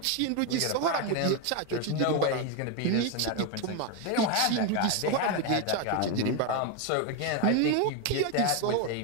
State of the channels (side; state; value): both; different; correlation 0.02